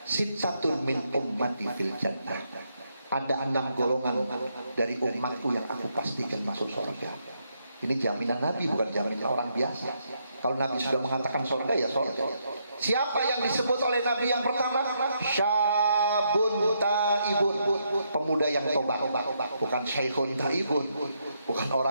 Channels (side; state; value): both; inverted; correlation -0.77